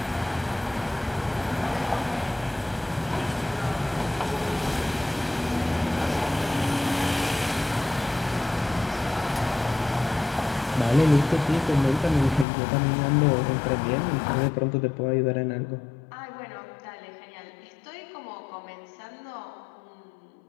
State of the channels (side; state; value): right; drops out; at 12.5 s